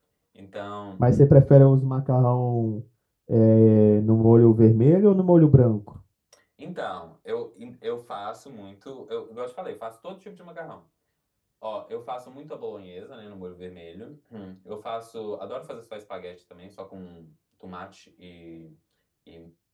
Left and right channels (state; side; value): identical; both; correlation 1.00